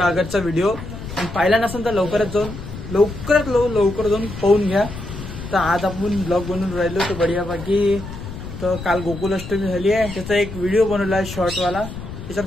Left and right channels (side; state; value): left; noise; rumble, 10 dB below the sound